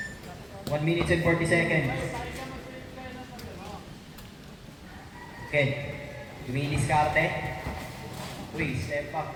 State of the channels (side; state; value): both; identical; correlation 1.00